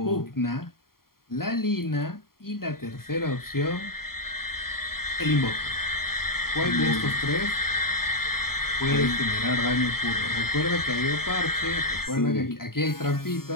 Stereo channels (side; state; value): right; late; 0.93 ms